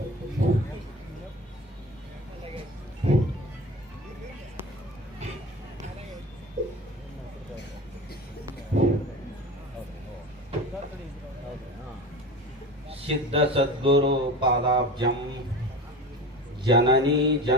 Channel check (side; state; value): both; normal; correlation 0.31